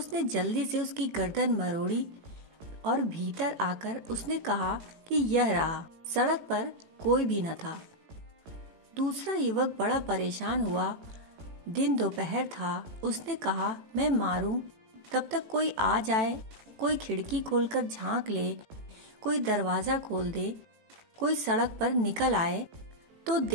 जल्दी से उसकी गर्दन मरोड़ी और भीतर आकर उसने कहा कि यह रहा, सड़क पर कोई भी न था। दूसरा युवक बड़ा परेशान हुआ। दिन दोपहर था। उसने कहा, मैं मारूं, तब तक कोई आ जाए, कोई खिड़की खोलकर झांक ले, कोई दरवाजा खोल दे, कोई सड़क पर निकल आए तो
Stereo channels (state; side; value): late; left; 18 ms